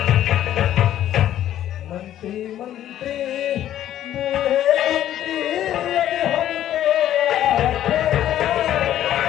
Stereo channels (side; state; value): right; quieter; 11.9 dB